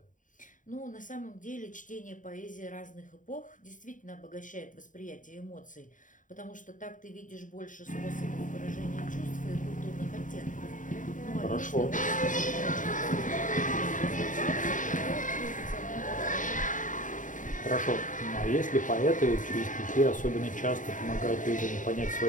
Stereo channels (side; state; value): right; late; 0.38 ms